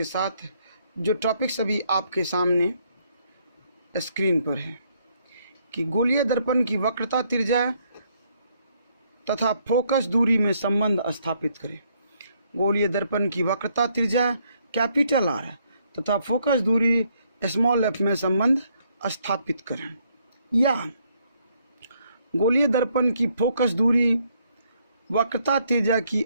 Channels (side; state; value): both; inverted; correlation -0.71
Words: साथ। जो टॉपिक्स अभी आपके सामने स्क्रीन पर है कि गोलीय दर्पण की वक्रता, त्रिज्या तथा फोकस दूरी में संबंध स्थापित करें। गोलीय दर्पण की वक्रता, त्रिज्या कैपिटल आर तथा फोकस दूरी स्मॉल एफ में संबंध स्थापित करें। या गोलीय दर्पण की फोकस दूरी वक्रता त्रिज्या की